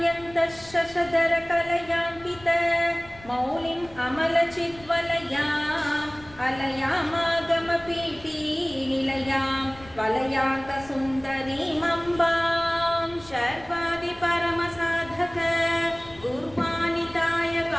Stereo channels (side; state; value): left; noise; rumble, 21 dB below the sound